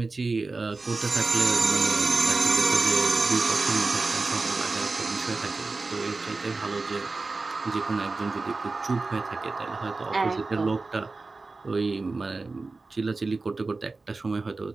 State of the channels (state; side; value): quieter; left; 3.7 dB